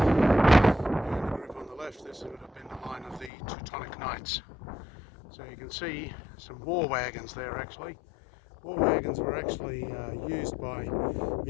the group on the left, this would have been the line of the Teutonic Knights. So you can see some war wagons there actually. War wagons were actually used by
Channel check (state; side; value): drops out; right; at 3.3 s